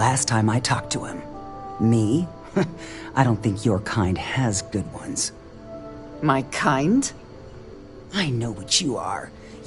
time I talked to him. Me? I don't think your kind has good ones. My kind? I know what you are.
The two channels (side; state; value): both; identical; correlation 1.00